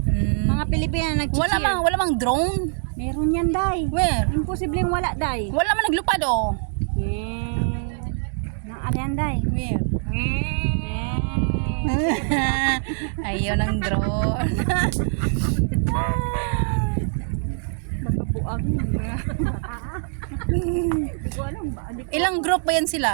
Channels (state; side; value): silent; left; 63 dB below the other